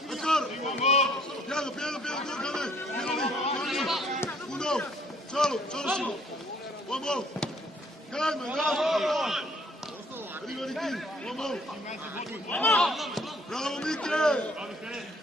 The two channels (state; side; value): normal; both; correlation 0.61